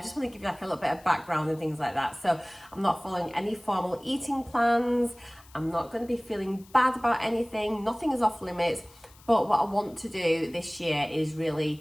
just want to give you like a little bit of background and things like that. So I'm not following any formal eating plans. I'm not going to be feeling bad about anything. Nothing is off limits. But what I want to do this year is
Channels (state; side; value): noise; left; hiss, 25 dB below the sound